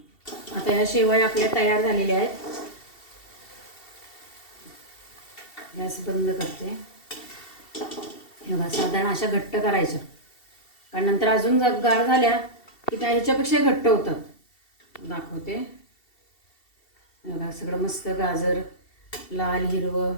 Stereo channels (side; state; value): right; late; 2.7 ms